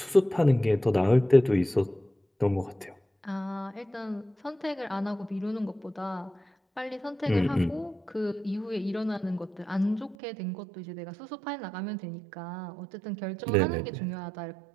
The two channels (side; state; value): left; drops out; at 10.2 s